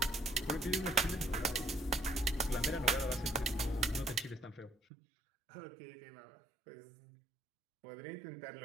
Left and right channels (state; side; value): drops out; left; at 4.8 s